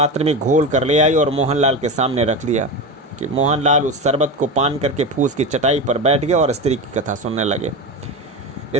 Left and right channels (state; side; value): normal; both; correlation 0.22